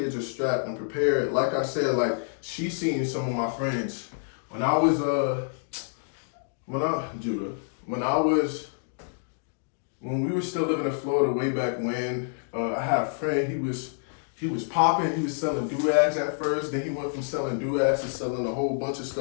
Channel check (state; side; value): silent; right; digital silence